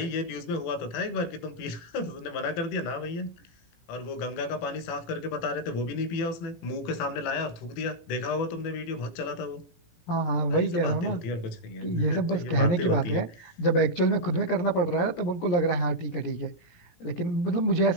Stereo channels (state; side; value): late; right; 18 ms